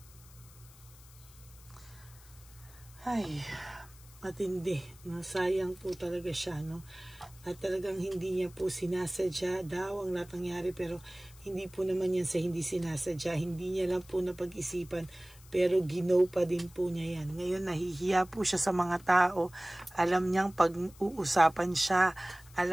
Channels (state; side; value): noise; left; hiss, 23 dB below the sound